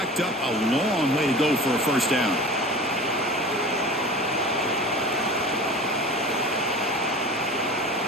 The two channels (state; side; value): normal; both; correlation 0.37